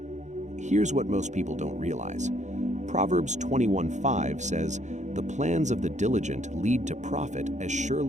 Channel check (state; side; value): late; left; 0.34 ms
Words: Here's what most people don't realize. Proverbs 21:5 says, "The plans of the diligent lead to profit as